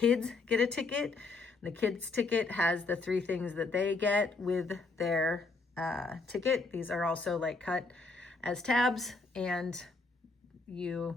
get a ticket. The kids ticket has the 3 things that they get with their ticket. These are also like cut as tabs, and you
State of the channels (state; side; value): quieter; right; 3.7 dB